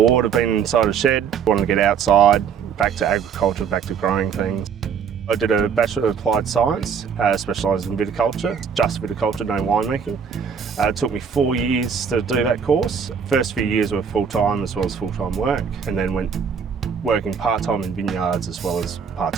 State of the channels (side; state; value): left; quieter; 6.9 dB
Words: of being inside a shed, wanted to get outside, back to agriculture, back to growing things. I did a Bachelor of Applied Science, specialised in viticulture, just viticulture, no winemaking. It took me 4 years to do that course. First few years were full-time as well as full-time work, and then went working part-time in vineyards as well as